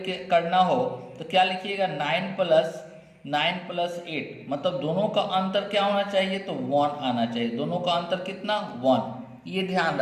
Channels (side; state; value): both; identical; correlation 1.00